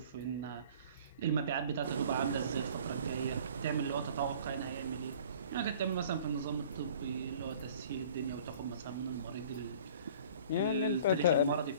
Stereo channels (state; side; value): inverted; both; correlation -0.49